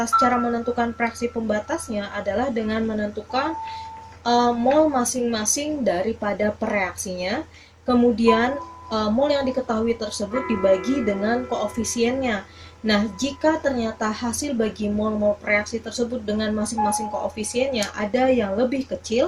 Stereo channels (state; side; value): identical; both; correlation 1.00